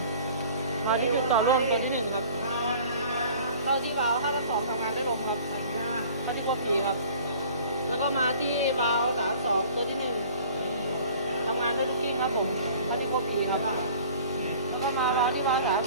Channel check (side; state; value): both; inverted; correlation -0.48